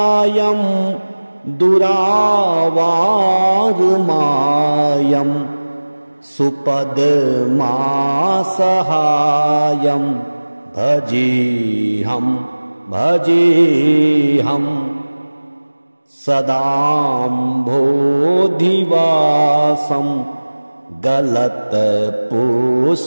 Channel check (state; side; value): inverted; both; correlation -1.00